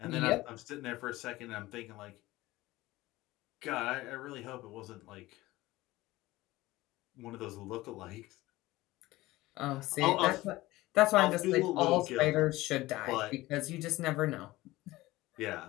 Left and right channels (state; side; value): quieter; right; 18.5 dB